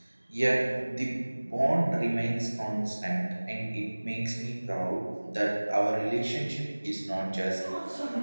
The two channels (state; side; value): inverted; both; correlation -1.00